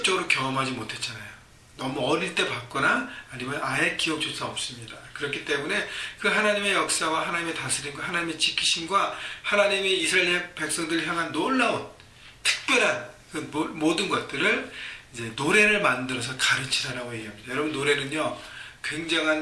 경험하지 못했잖아요. 너무 어릴 때 봤거나 아니면 아예 기억조차 없습니다. 그렇기 때문에 그 하나님의 역사와 하나님의 다스림과 하나님의 지키심과 하나님의 이스라엘 백성들을 향한 놀라운 특별한 그 모든 것들을 이제 노래를 만들어서 가르치라라고 얘기합니다. 여러분, 노래는요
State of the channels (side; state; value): both; identical; correlation 1.00